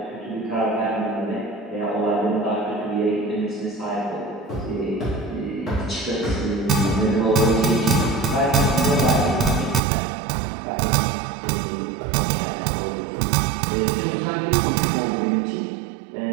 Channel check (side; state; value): left; drops out; at 9.8 s